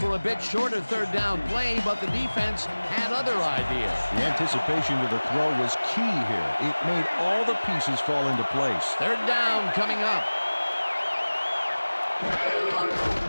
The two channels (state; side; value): inverted; both; correlation -1.00